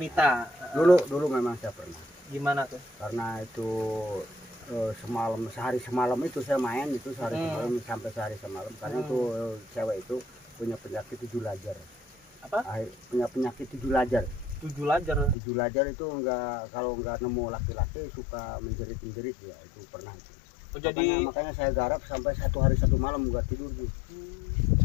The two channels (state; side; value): drops out; right; at 15.4 s